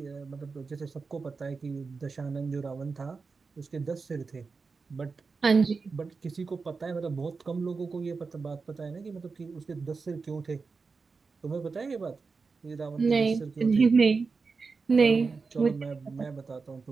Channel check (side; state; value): left; quieter; 4.6 dB